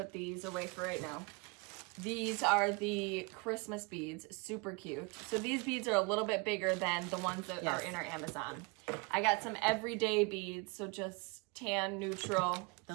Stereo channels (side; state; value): left; quieter; 29.5 dB